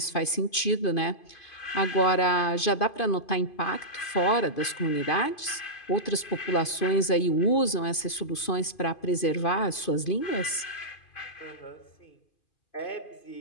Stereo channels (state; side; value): late; right; 2.5 ms